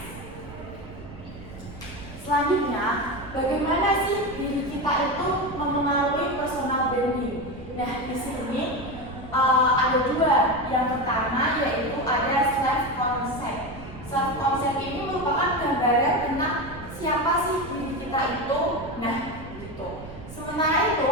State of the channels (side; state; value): right; noise; rumble, 15 dB below the sound